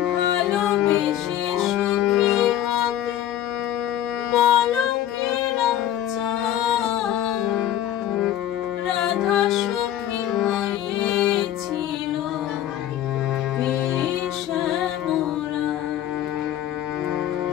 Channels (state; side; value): quieter; right; 11.8 dB